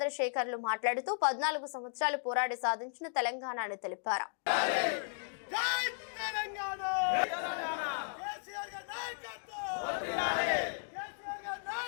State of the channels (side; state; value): right; silent; digital silence